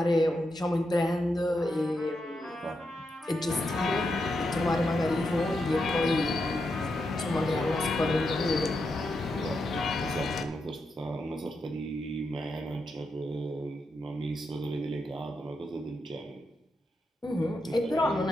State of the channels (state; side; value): normal; both; correlation 0.85